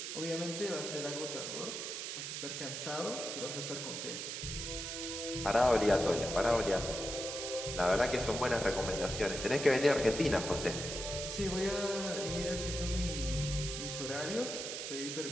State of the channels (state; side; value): noise; right; hiss, 5 dB below the sound